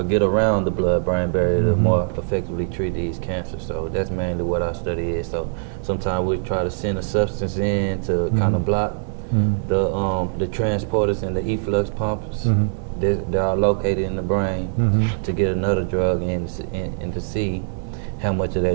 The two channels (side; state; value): left; silent; 60 dB below the other